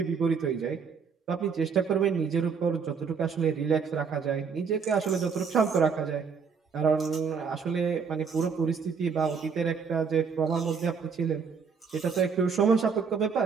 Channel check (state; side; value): quieter; left; 5.9 dB